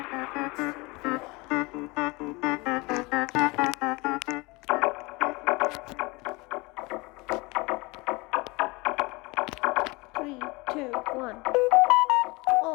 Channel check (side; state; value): right; quieter; 25.1 dB